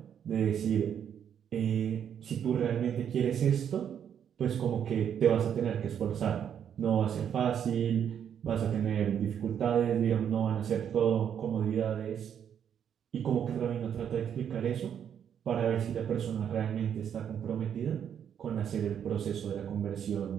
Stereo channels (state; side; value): quieter; left; 8.7 dB